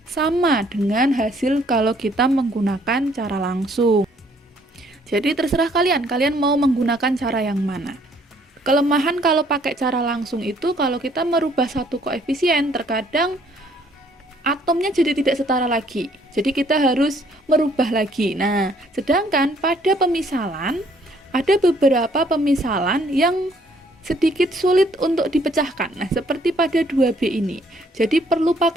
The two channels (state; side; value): normal; both; correlation 0.64